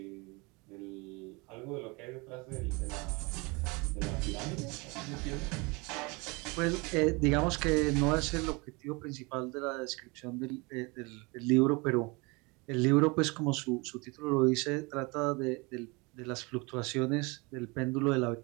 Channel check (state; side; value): quieter; left; 27.3 dB